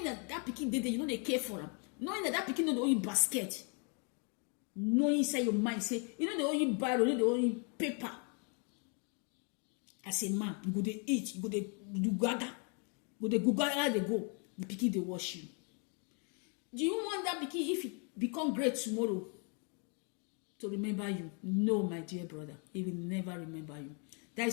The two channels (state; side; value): quieter; right; 37.3 dB